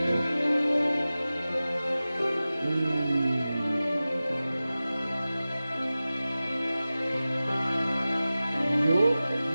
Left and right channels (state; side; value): inverted; both; correlation -0.96